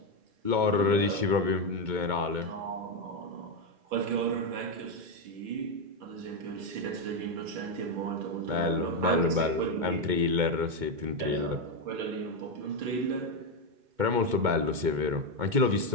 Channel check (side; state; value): left; late; 2.2 ms